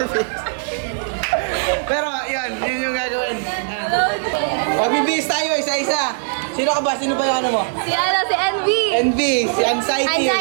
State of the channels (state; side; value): silent; left; digital silence